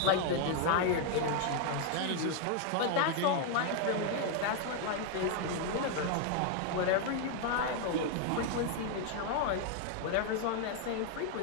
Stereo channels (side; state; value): both; different; correlation 0.00